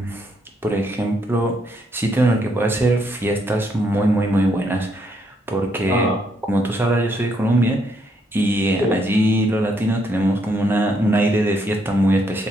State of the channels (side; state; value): both; normal; correlation 0.74